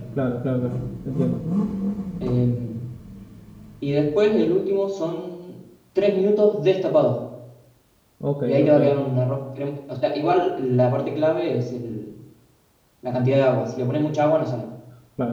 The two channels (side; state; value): both; identical; correlation 1.00